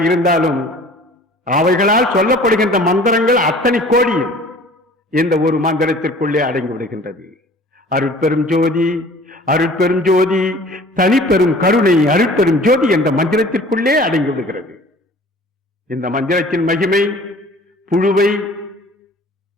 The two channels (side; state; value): both; normal; correlation 0.48